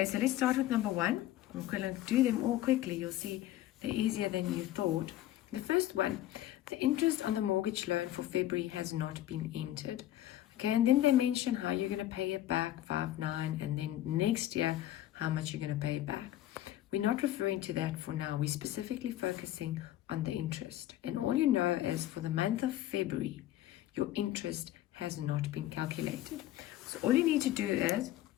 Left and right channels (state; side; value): quieter; right; 13.8 dB